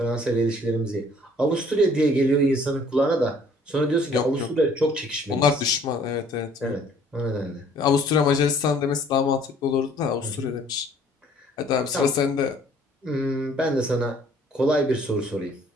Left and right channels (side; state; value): both; normal; correlation 0.57